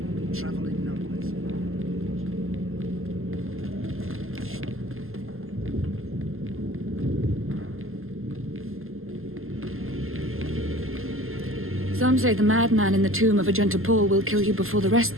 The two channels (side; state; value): left; late; 0.61 ms